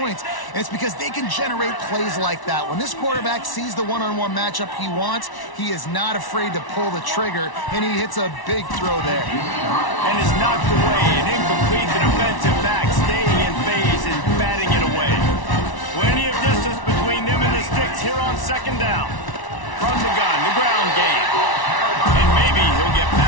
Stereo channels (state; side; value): late; right; 1.1 ms